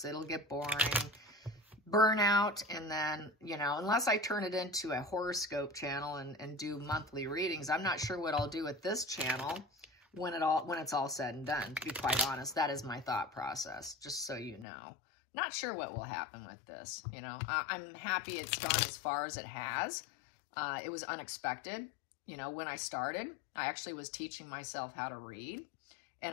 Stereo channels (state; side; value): drops out; right; at 14.7 s